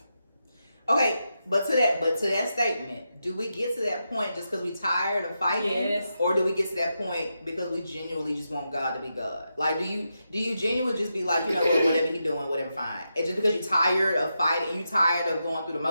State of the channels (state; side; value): inverted; both; correlation -0.86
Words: Okay, but to that statement, do we get to that point just because we tired of fighting, Yes. or do we get to that point because we genuinely just want God to be God? Like, do you genuinely just be like, you know what, whatever he doing, whatever, fine? It's just because you're tired of fighting, you tired of going through the